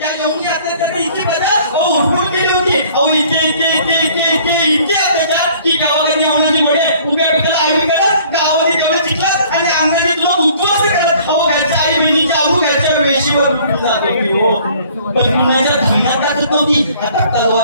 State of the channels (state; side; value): inverted; both; correlation -0.55